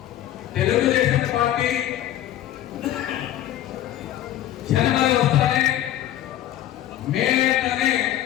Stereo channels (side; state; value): right; quieter; 12.7 dB